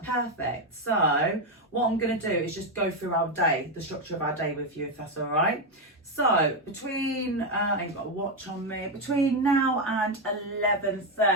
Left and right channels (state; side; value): normal; both; correlation 0.07